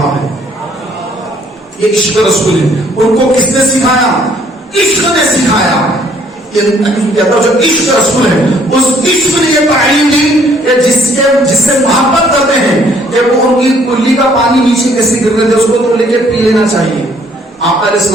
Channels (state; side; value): normal; both; correlation 0.63